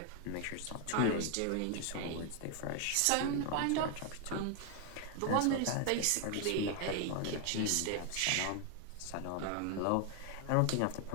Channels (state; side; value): different; both; correlation 0.00